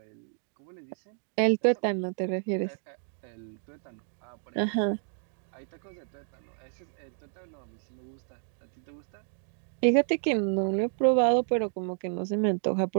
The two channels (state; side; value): silent; left; digital silence